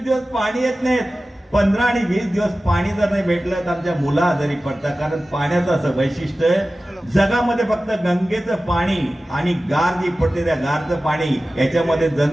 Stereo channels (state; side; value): normal; both; correlation 0.96